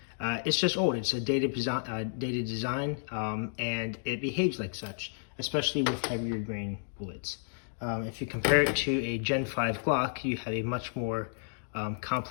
It's just old. It's a dated design, and it behaves like such, especially with heavier grain bullets. If you compare it to a Gen 5 Glock, you have a much more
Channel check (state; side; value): silent; right; digital silence